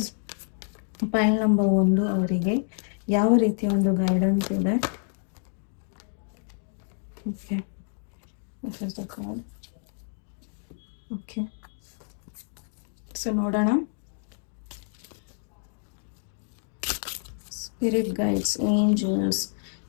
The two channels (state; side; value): silent; right; digital silence